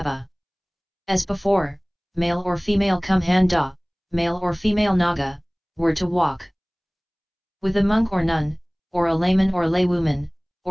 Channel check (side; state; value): both; identical; correlation 1.00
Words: As before, male or female Kumhanda, male or female Naga, were to walk with a monk or nun, or a layman or laywoman,